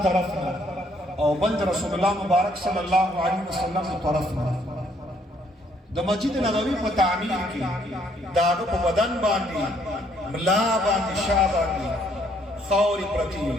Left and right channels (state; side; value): normal; both; correlation 0.67